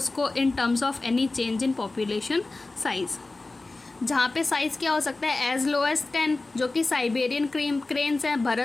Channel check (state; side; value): quieter; right; 3.3 dB